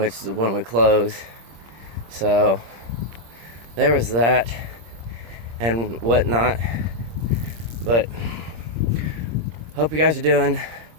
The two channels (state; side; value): late; left; 26 ms